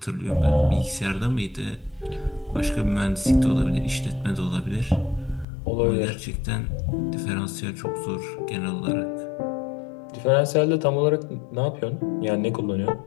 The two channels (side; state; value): right; drops out; at 5.5 s